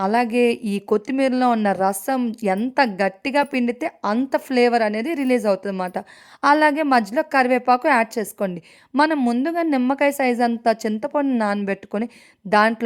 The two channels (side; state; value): both; identical; correlation 1.00